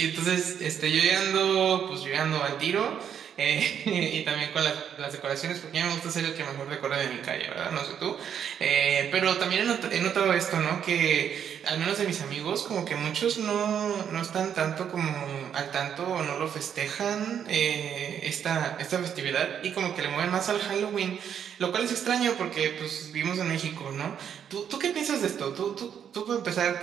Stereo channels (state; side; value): quieter; left; 8.5 dB